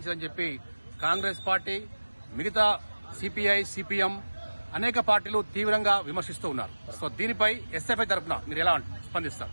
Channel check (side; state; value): both; inverted; correlation -1.00